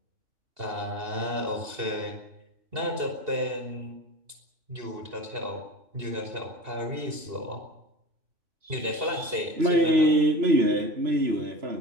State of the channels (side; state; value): left; late; 2.7 ms